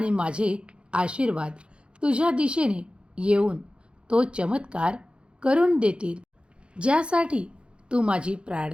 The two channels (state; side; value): late; left; 0.056 ms